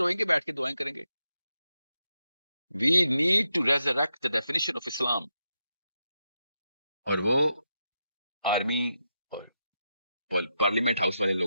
گے، بیٹھ کے دعائیں کریں گے. We need to resurrect the definition of Islam, اور وہ آرمی اور پارلیمنٹ ہاؤس والے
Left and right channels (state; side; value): inverted; both; correlation -0.85